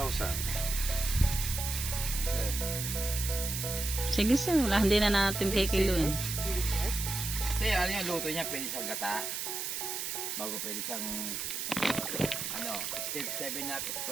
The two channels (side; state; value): right; noise; hiss, 3 dB below the sound